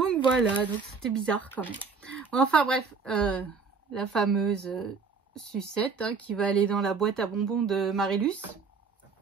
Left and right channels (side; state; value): left; quieter; 5.1 dB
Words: voilà, donc c'était bizarre quand même. Enfin bref, la fameuse sucette hein, qui va aller dans la boîte à bonbons de Marilus,